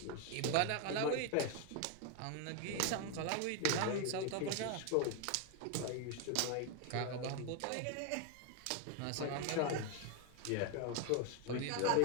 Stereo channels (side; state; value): both; different; correlation 0.01